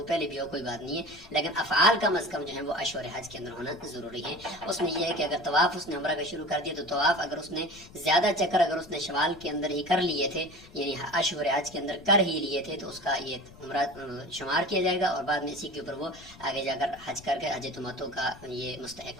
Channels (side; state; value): left; noise; rumble, 21 dB below the sound